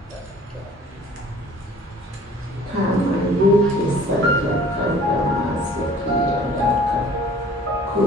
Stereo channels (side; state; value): both; normal; correlation 0.50